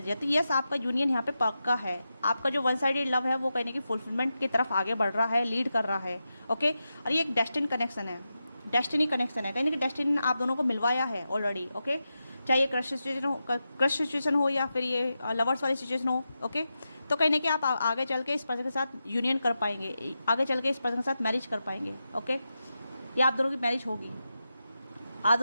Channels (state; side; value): inverted; both; correlation -0.90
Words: है। तो यस, आपका यूनियन यहाँ पे पक्का है, आपका जो वन साइडेड लव है वो कहने की फुलफिलमेंट की तरफ आगे बढ़ रहा है, लीड कर रहा है। ओके, और ये एक डेस्टिनी कनेक्शन है, डेस्टिनी कनेक्शन है, कहीं ना कहीं डेस्टिनी ने आप दोनों को मिलवाया है ऑलरेडी। ओके, चाहे ये क्रश सिचुएशन हो या फिर ये लवर्स वाली सिचुएशन हो। ओके, तो कहीं ना कहीं आप आगे चल के इस पर्सन के साथ यूनियन कर पाएंगे, आगे चल के इस पर्सन के साथ मैरिज कर पाएंगे। ओके, या आप दोनों की मैरिज होगी, आप